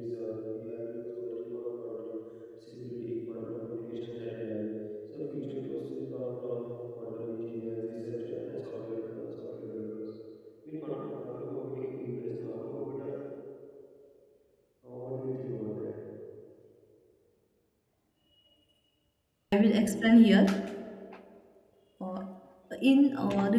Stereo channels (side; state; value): both; identical; correlation 1.00